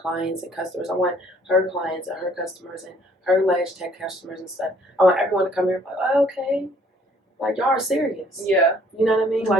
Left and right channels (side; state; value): both; normal; correlation 0.60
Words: and customers. I want her clients and her customers and her Lash Tech customers and stuff. I want everyone to come here and be like, oh, okay. Like, y'all are serious. Yeah. You know what I mean?